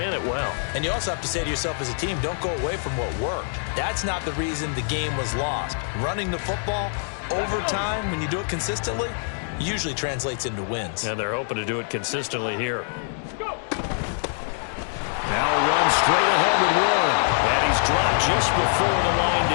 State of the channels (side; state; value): right; silent; digital silence